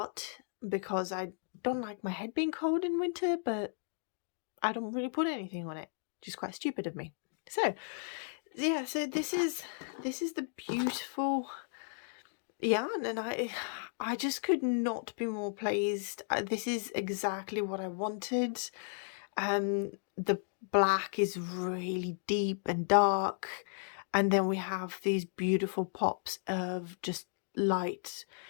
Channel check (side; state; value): right; silent; digital silence